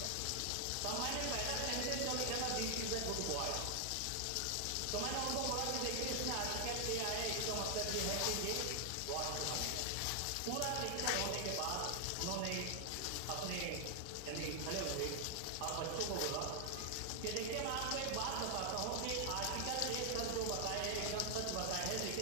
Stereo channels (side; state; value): both; different; correlation 0.00